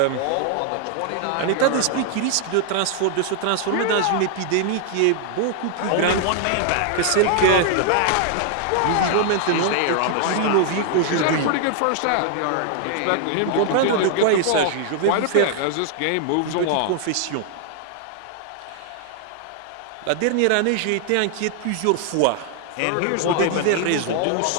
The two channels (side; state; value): both; different; correlation 0.00